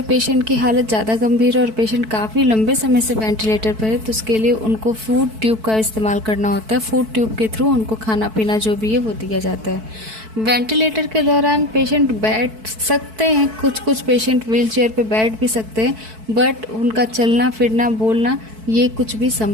पेशेंट की हालत ज़्यादा गंभीर है और पेशेंट काफ़ी लंबे समय से वेंटिलेटर पर है तो उसके लिए उनको फूड ट्यूब का इस्तेमाल करना होता है। फूड ट्यूब के थ्रू उनको खाना पीना जो भी है वो दिया जाता है। वेंटिलेटर के दौरान पेशेंट बैठ सकते हैं, कुछ पेशेंट व्हील चेयर पर बैठ भी सकते हैं, बट उनका चलना फिरना बोलना ये कुछ भी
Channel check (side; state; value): left; late; 4.6 ms